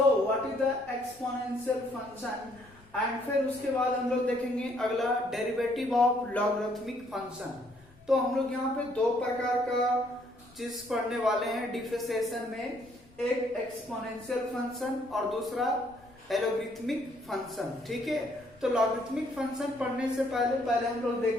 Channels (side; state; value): left; noise; rumble, 27 dB below the sound